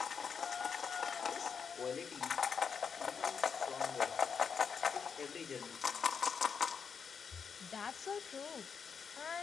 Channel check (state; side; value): quieter; right; 6.3 dB